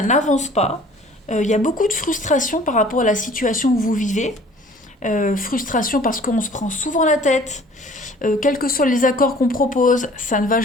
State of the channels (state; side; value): normal; both; correlation 0.51